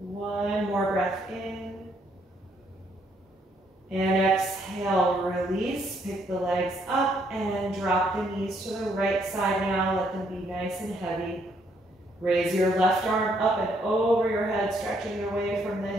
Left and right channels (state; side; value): normal; both; correlation 0.70